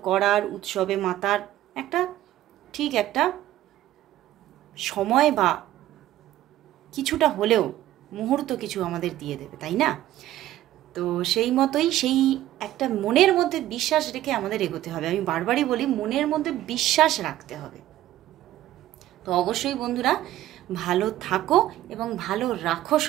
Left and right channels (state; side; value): quieter; left; 14.0 dB